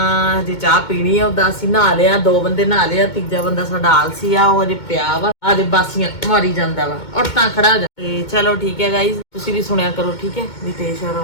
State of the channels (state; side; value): late; right; 2.2 ms